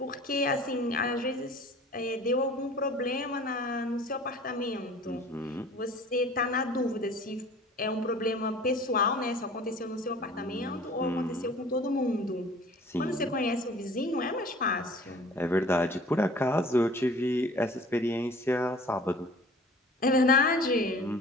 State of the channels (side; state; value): both; normal; correlation 0.47